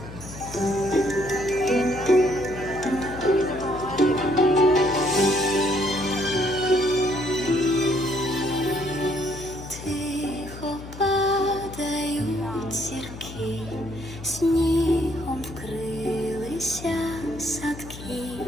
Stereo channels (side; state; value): left; noise; hum, 13 dB below the sound